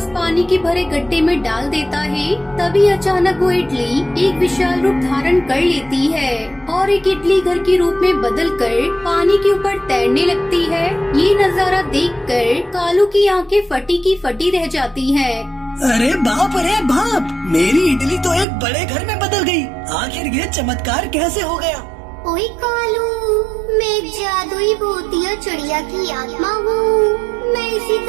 पानी के भरे गड्ढे में डाल देता है। तभी अचानक वो इडली एक विशाल रूप धारण कर लेती है और एक इडली घर के रूप में बदलकर पानी के ऊपर तैरने लगती है। ये नजारा देखकर कालू की आंखें फटी की फटी रह जाती हैं। अरे बाप, मेरी इडली तो एक बड़े घर में बदल गई। आखिर ये चमत्कार कैसे हो गया? ओए कालू, मैं एक जादुई भूतिया चिड़िया की आत्मा हूँ। मैं इसी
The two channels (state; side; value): drops out; left; at 18.4 s